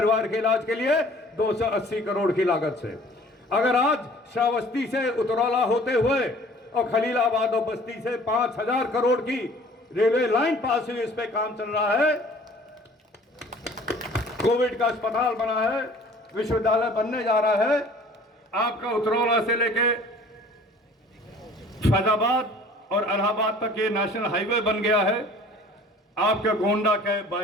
के इलाज के लिए 280 करोड़ की लागत से, अगर आज श्रावस्ती से उतरौला होते हुए और खलीलाबाद और बस्ती से 5000 करोड़ की रेलवे लाइन पास हुई, इस पे काम चल रहा है, कोविड का अस्पताल बना है, विश्वविद्यालय बनने जा रहा है, आपका उतरौला से लेके फैजाबाद और इलाहाबाद तक ये नेशनल हाईवे बन गया है, आपके गोंडा के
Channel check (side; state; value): both; normal; correlation 0.50